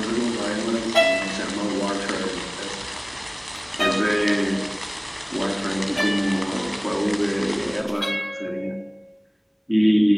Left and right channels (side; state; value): both; identical; correlation 1.00